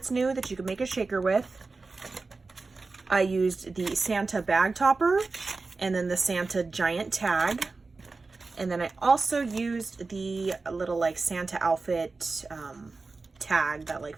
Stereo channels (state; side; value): quieter; left; 3.9 dB